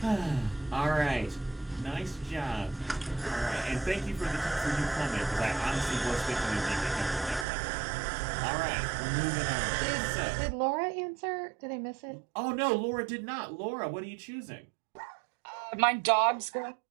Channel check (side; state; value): left; drops out; at 7.5 s